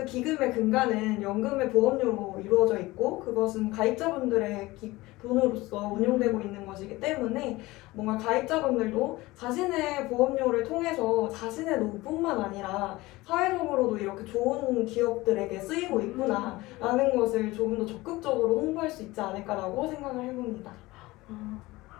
기금의 근간은 연금의 보험료로 이루어져 있고 그것은 가입자분들의 돈으로서 운용되고 있는 것이기 때문에 뭔가 가입자분들도 자신의 보험료를 통해서 자신의 노후뿐만 아니라 사회적으로도 이렇게 좋은 기업들에게 쓰이고 있구나라는 것을 조금 더 적극적으로 홍보할 수 있지 않을까라고 생각을 해봅니다.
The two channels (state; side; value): quieter; right; 20.0 dB